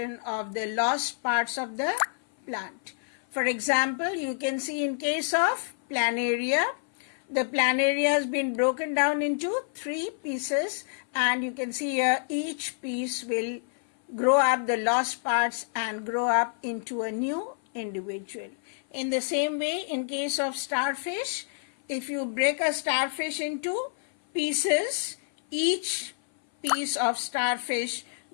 of the lost parts of the plant. For example, you can see in case of planaria, the planaria has been broken down into 3 pieces, and you can see here each piece will grow up the lost parts and grow up into a new individual. In the same way, in case of starfish, if you break a starfish into pieces, each piece of starfish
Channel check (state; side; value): silent; right; 57 dB below the other